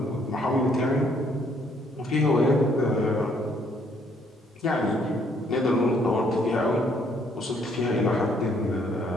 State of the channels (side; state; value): both; normal; correlation 0.67